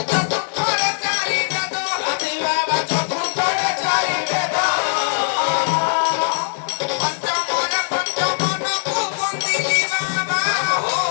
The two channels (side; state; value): right; silent; 61 dB below the other